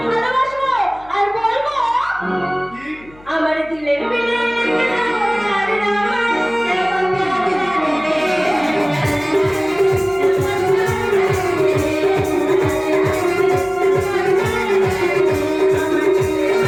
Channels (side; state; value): left; noise; hum, 25 dB below the sound